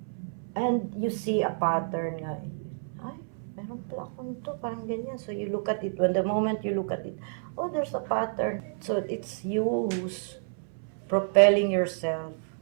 and you see a pattern nga. Ay, meron pala ako nito, parang ganyan. So you look at it. When the moment you look at it, oh, there's a pattern. So it's you who's propelling yourself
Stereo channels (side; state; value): left; silent; 58 dB below the other